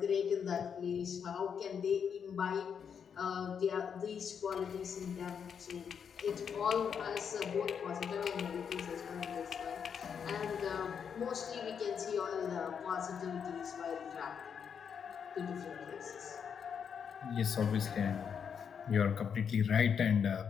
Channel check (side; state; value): right; quieter; 7.2 dB